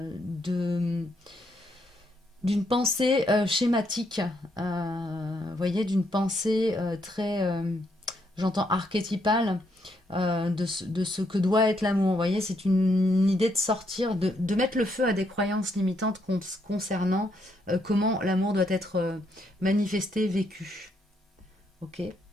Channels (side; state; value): both; normal; correlation 0.75